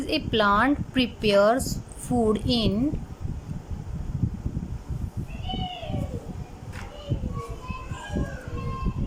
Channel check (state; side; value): identical; both; correlation 1.00